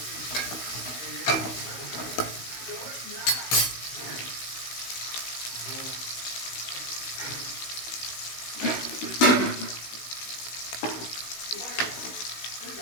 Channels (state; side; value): late; right; 16 ms